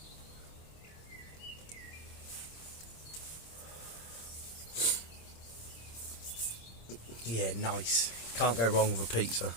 Yeah, nice. Can't go wrong with a pizza.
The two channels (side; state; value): right; late; 26 ms